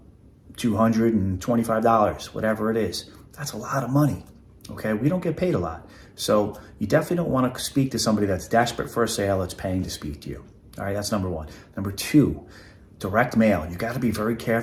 $225, whatever it is. That's a lot of money. Okay, we don't get paid a lot. So you definitely don't want to speak to somebody that's desperate for a sale that's paying to speak to you. All right, that's number one. Number two, direct mail. You got to be very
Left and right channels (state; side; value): identical; both; correlation 1.00